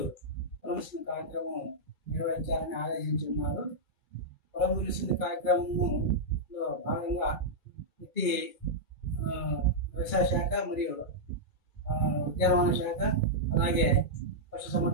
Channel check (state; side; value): late; right; 2.3 ms